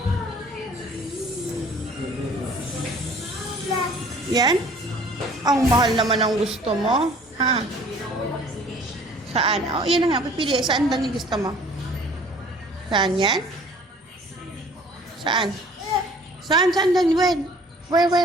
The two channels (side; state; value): both; normal; correlation 0.52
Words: Yan? Ang mahal naman ang gusto mo. Ha? Saan? Oh, yan na nga. Pipili. Saan lang yung gusto mo? Saan yan? Saan? Saan lang?